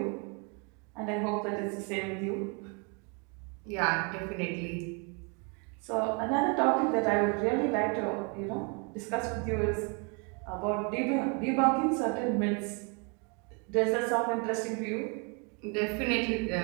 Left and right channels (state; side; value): quieter; left; 34.6 dB